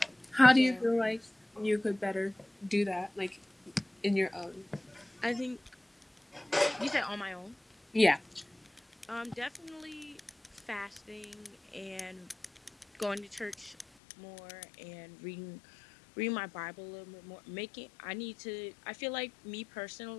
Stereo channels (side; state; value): right; drops out; at 13.9 s